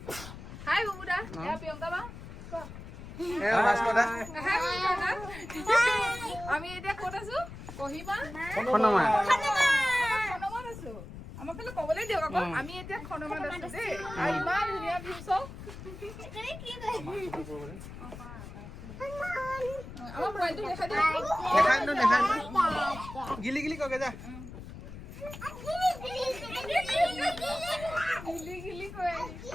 হাই বুবুদা এয়া প্ৰিয়ংকা বা এ ভাস্কৰদা হাই বুবুদা আমি এতিয়া ক'ত আছো কহিমা খনমা খনমাত আছো আমাক ফালে ক'বলৈ দিয়ক আকৌ আমি এতিয়া খনমাত আছো দেই আৰু ইমান ধুনীয়া ভিউ চাওক আমার মোবাইলটো দেখা দিও দেখাই ন গিলি গিলি কগে যা গিলি গিলি কই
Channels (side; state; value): left; noise; rumble, 12 dB below the sound